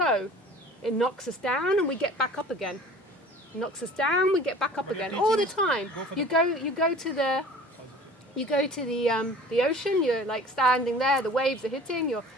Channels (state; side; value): normal; both; correlation 0.45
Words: It knocks us down and we get back up again. It knocks us down, we get back up again. All the time. You go to the ocean, you're like standing there, the waves are hitting, you're